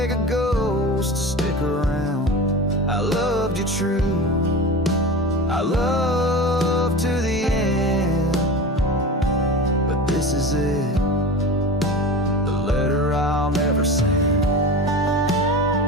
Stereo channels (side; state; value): both; normal; correlation 0.31